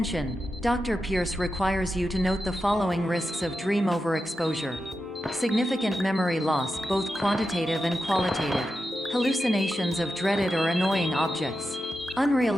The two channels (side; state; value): both; normal; correlation 0.89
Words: Dr. Pierce requires you to note the following risks of dream overexposure. Significant memory loss, both quantitative and qualitative. Hallucinations of dreaded or annoying objects.